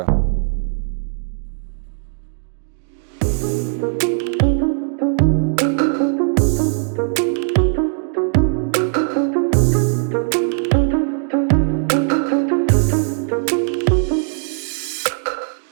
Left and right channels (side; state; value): left; silent; digital silence